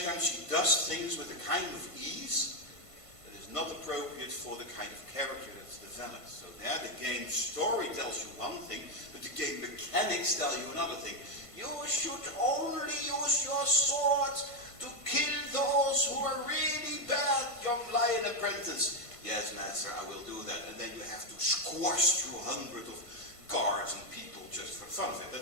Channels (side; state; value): right; late; 1.5 ms